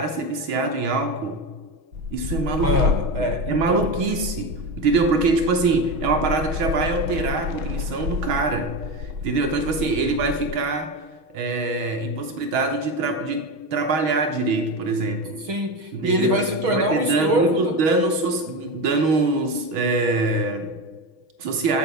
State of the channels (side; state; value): left; late; 6.3 ms